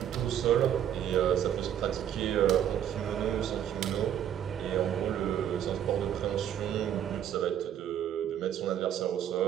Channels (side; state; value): left; quieter; 10.0 dB